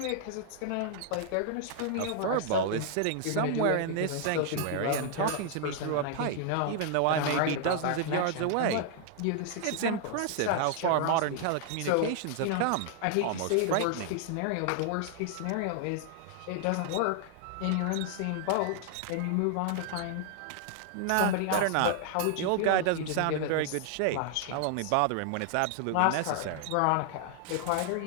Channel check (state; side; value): different; both; correlation 0.00